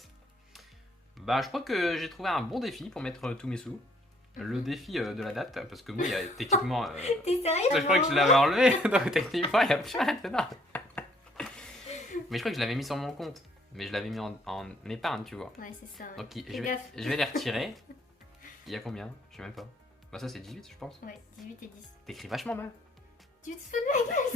Bah, je crois que j'ai trouvé un bon défi pour mettre tous mes sous. Le défi de la date, parce que moi, il y a techniquement... T'es sérieux? Je crois que je l'avais enlevé, donc techniquement, il n'y a plus rien dedans. Mais je crois que je l'avais mis sur mon compte. Mais je l'avais mis en épargne, tu vois. Ouais, c'est ça. Ouais. Donc Fais gaffe. je vais les retirer. Il y a combien? Je sais même pas. Bah ça c'est 18 je pense. Ouais, 18 et 10. T'écris vachement mal. Tu te fous de ma gueule,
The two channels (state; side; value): normal; both; correlation 0.64